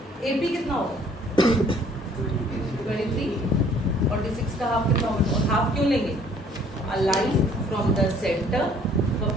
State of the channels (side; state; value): both; normal; correlation 0.58